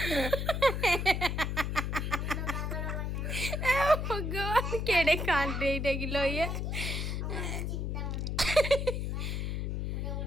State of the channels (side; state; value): left; noise; hum, 1 dB below the sound